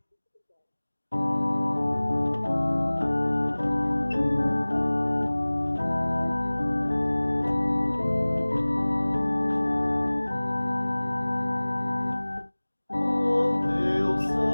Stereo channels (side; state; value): both; inverted; correlation -1.00